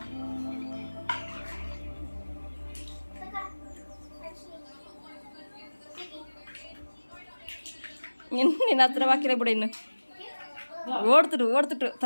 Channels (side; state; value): both; inverted; correlation -1.00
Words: ನಿನ್ನ ಹತ್ರ ಹಾಕಿಲ್ಲ ಬಿಡ. ಇನ್ನು ಓಡ್ತಿಟ್ಟು